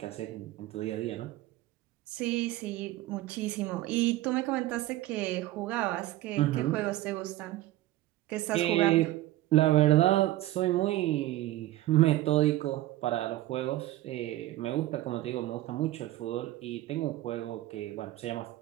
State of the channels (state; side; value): quieter; left; 15.8 dB